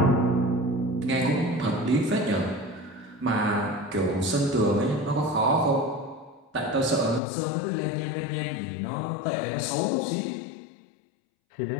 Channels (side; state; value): right; drops out; at 7.2 s